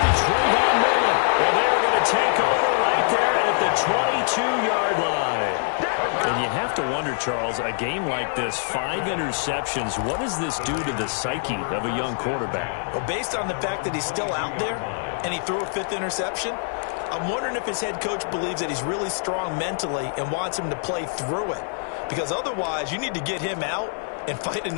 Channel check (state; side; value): silent; right; digital silence